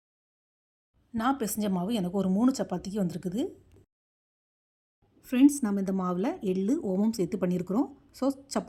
நான் பிசைஞ்ச மாவு எனக்கு ஒரு 3 சப்பாத்திக்கு வந்திருக்குது. ஃப்ரெண்ட்ஸ், நம்ம இந்த மாவில் எள்ளு ஓமம் சேர்த்து பண்ணியிருக்கிறோம். ஸோ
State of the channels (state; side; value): identical; both; correlation 1.00